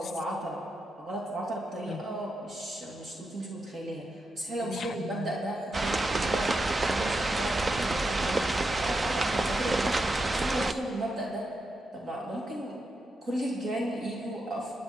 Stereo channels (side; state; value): both; normal; correlation 0.85